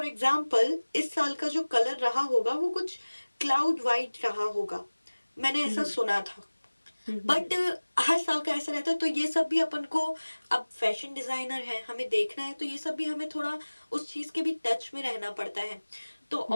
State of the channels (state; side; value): inverted; both; correlation -1.00